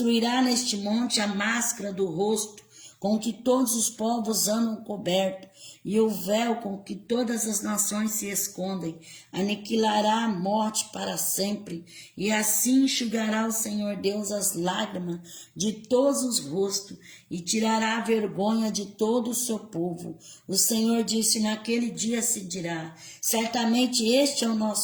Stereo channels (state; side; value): identical; both; correlation 1.00